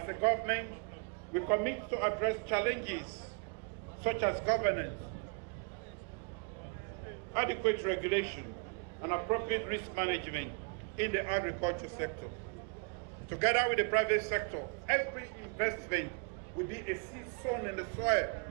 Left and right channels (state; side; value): quieter; left; 36.7 dB